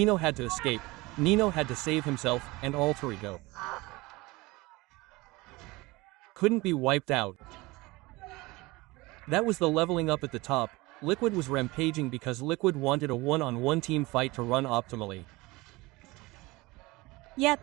had to escape, Nino had to save himself, and alterego couldn't be wiped out. That was the leveling up at the top. Liquid was rampaging because Liquid wanted a one-on-one team fight to run optimally.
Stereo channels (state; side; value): quieter; left; 22.0 dB